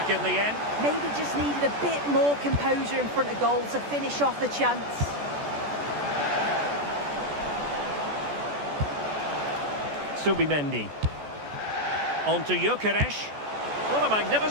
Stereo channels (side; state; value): left; late; 14 ms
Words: in the end. Maybe just needed a bit more composure in front of goal to finish off the chance. Subimendi. On to Gyökeres. What a